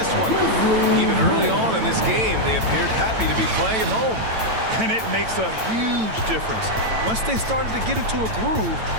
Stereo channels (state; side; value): late; left; 9.0 ms